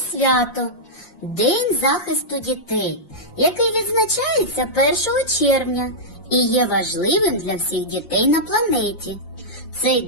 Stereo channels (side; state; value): right; late; 5.7 ms